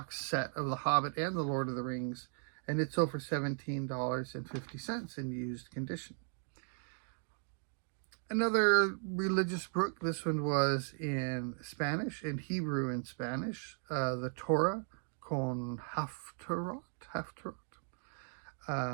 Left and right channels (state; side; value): silent; left; 53 dB below the other